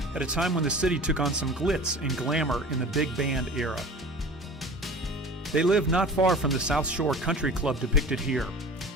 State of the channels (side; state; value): both; normal; correlation 0.39